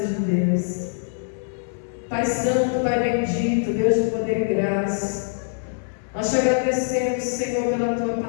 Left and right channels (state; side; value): silent; right; 61 dB below the other